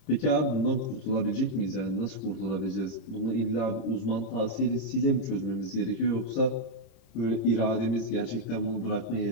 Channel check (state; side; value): late; right; 26 ms